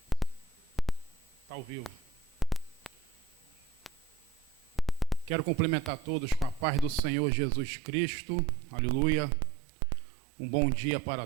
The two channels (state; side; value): drops out; left; at 7.0 s